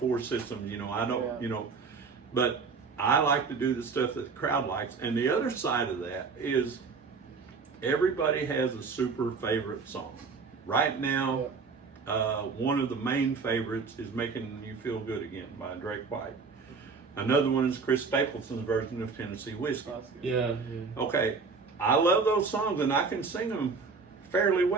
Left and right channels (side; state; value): left; quieter; 4.9 dB